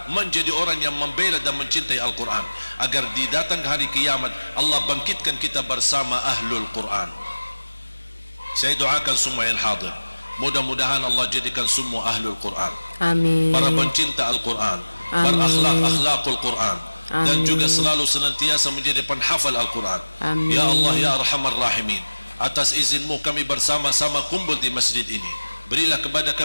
menjadi orang yang membela dan mencintai Al-Quran, agar di datang hari kiamat Allah bangkitkan kita bersama ahlul Quran. Saya doakan semua yang hadir, mudah-mudahan Allah jadikan semua ahlul Quran, Amin. para pencinta Al-Quran, berakhlak-akhlakul Quran, dan juga selalu senantiasa menjadi penghafal Al-Quran. Amin. Ya Allah ya Arhamar Rahimin, atas izinmu kami bersama-sama kumpul di masjid ini. Berilah kepada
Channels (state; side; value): inverted; both; correlation -1.00